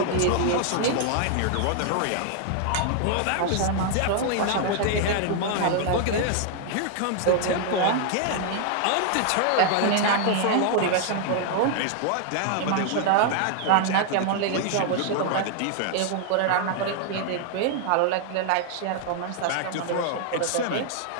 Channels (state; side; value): different; both; correlation 0.00